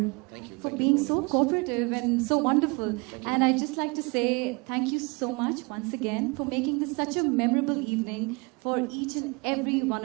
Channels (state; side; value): quieter; left; 29.3 dB